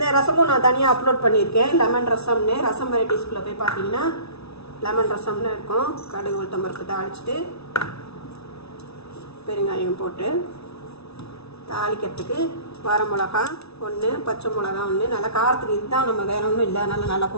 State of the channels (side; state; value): right; late; 0.79 ms